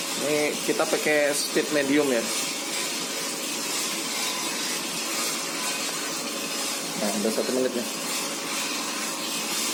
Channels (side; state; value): both; identical; correlation 1.00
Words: Ini kita pakai speed medium ya. Nah, udah 1 menit nih.